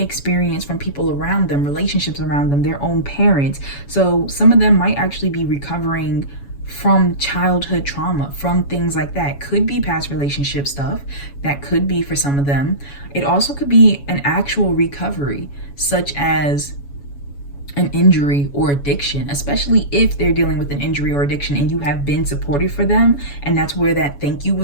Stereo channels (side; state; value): right; late; 7.1 ms